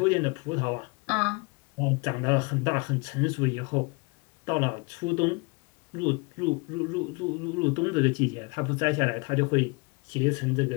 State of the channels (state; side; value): quieter; right; 30.2 dB